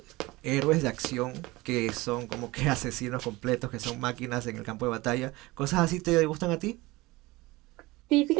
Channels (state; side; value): quieter; left; 21.1 dB